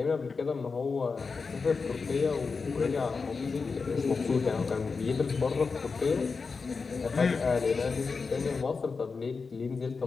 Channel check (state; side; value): quieter; right; 4.7 dB